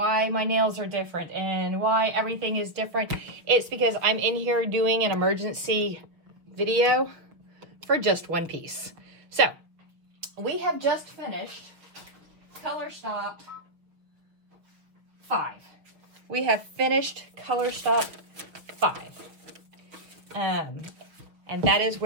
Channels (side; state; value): left; late; 6.2 ms